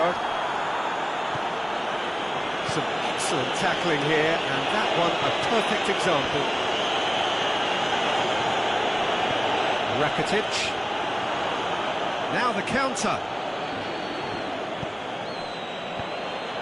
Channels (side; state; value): both; identical; correlation 1.00